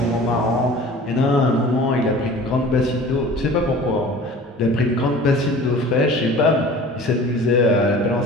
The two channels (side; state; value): both; normal; correlation 0.43